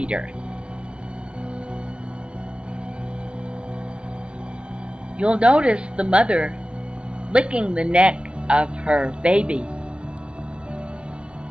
You'll notice the mother licking the neck of her baby,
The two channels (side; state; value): left; late; 0.058 ms